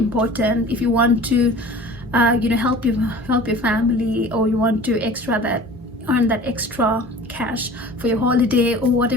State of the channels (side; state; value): both; normal; correlation 0.42